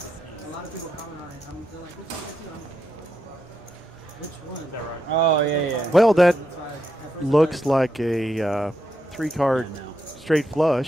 lot of people comment on it. They're like, which one? Is that right? Oh, yeah. Well, that looks like a 3-card straight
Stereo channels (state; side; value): normal; both; correlation 0.82